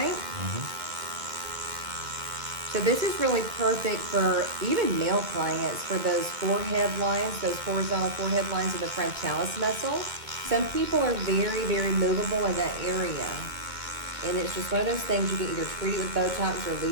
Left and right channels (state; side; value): late; left; 2.3 ms